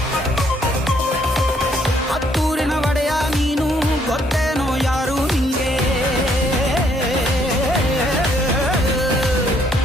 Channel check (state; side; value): normal; both; correlation 0.68